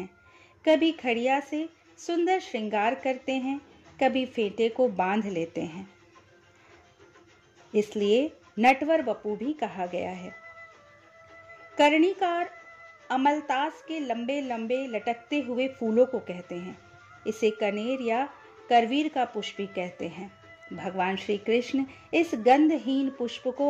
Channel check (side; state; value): both; identical; correlation 1.00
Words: कभी खड़िया से सुंदर श्रृंगार करते हैं, कभी फेंटे को बांध लेते हैं, इसलिए नटवर वपु भी कहा गया है। कर्णिकार अमलतास के लंबे लंबे लटकते हुए फूलों को कहते हैं। इसे कनेर या करवीर का पुष्प भी कहते हैं। भगवान श्री कृष्ण इस गंधहीन पुष्प को